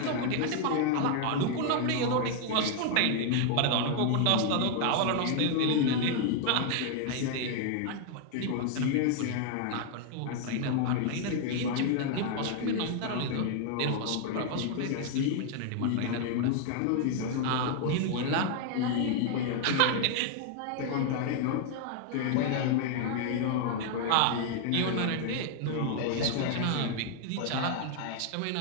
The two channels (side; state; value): both; different; correlation 0.00